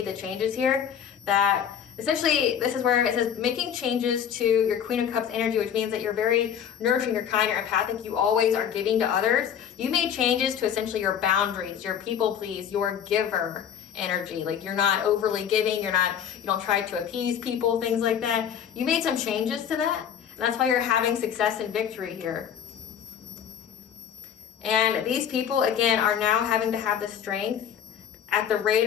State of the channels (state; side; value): quieter; right; 8.6 dB